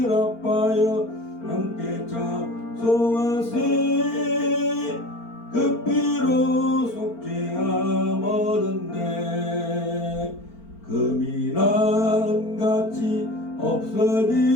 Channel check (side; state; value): right; late; 4.4 ms